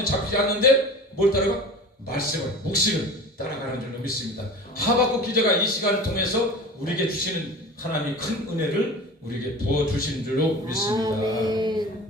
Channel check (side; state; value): both; normal; correlation 0.37